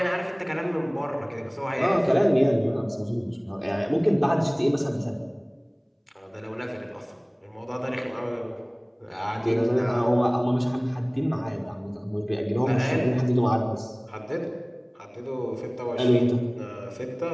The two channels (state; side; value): identical; both; correlation 1.00